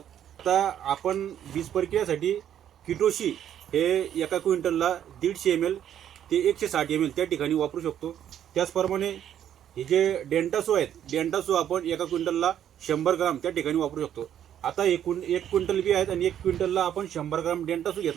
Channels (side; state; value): left; quieter; 10.2 dB